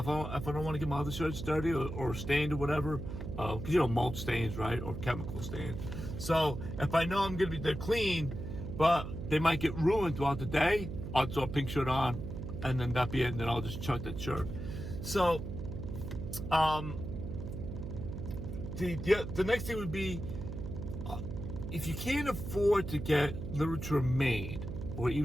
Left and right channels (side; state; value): right; noise; hum, 7 dB below the sound